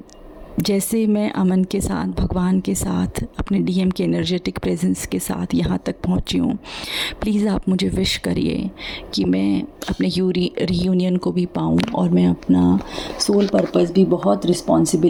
जैसे मैं अमन के साथ, भगवान के साथ, अपने डीएम के एनर्जेटिक प्रेजेंस के साथ यहाँ तक पहुँची हूँ, प्लीज़ आप मुझे विश करिए कि मैं अपने रीयूनियन को भी पाऊँ और मैं अपना सोल पर्पस भी बहुत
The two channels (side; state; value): both; identical; correlation 1.00